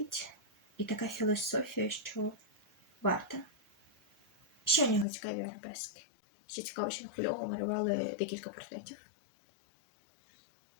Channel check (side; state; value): right; drops out; at 5.1 s